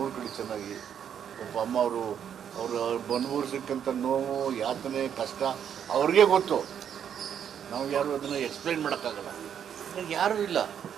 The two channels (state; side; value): quieter; left; 8.7 dB